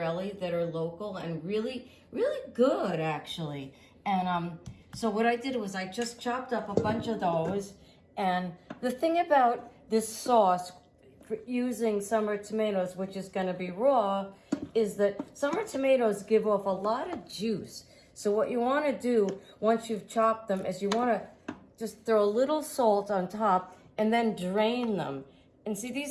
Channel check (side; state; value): both; identical; correlation 1.00